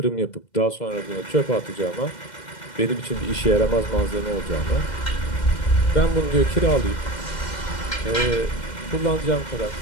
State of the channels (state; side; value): late; right; 2.1 ms